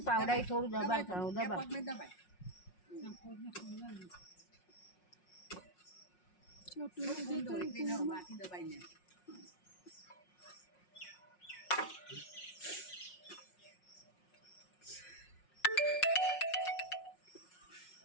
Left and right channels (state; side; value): late; right; 5.5 ms